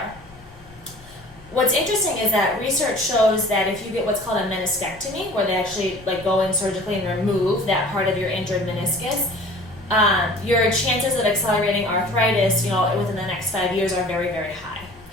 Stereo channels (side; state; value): left; noise; rumble, 24 dB below the sound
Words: What's interesting is that research shows that if you get what's called a meniscectomy, where they actually go in surgically and remove that part of your injured meniscus, your chances of accelerating arthritis, within the next 5 years are very, very high.